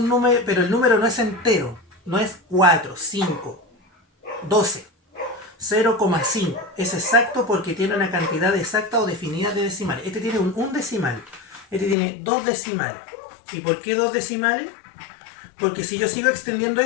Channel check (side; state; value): right; drops out; at 12.0 s